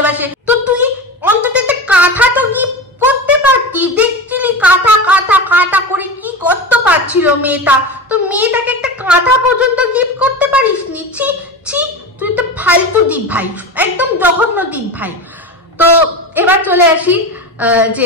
তো তুই অন্তত একটা কাঁথা তো গিফট করতে পারতি, দেখছিলি কাঁথা করে কি করতে পারছিল মেয়েটা, তো মেয়েটাকে একটা কাঁথা পর্যন্ত গিফট করতে পারিস নি। ছি, তুই তো ফালতু দীপ ভাই, একদম জঘন্য দীপ ভাই। তো এবার চলে আসি যে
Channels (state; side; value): normal; both; correlation 0.25